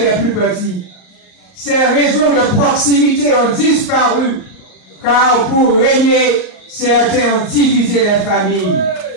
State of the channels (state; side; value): late; right; 37 ms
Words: plus petits. Ces réseaux de proximité ont disparu, car pour régner, certains ont divisé les familles.